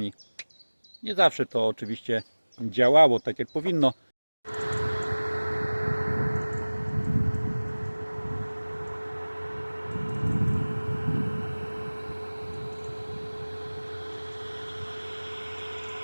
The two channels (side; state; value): both; inverted; correlation -1.00